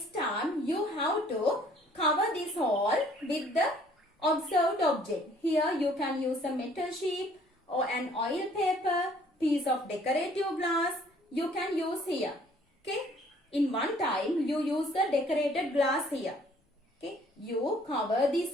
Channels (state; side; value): normal; both; correlation 0.59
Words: time, you have to cover this hole with the observed object. Here you can use a metal sheet or an oil paper, piece of decorative glass. You can use here. Okay. In one time, you use the decorated glass here. Okay. You cover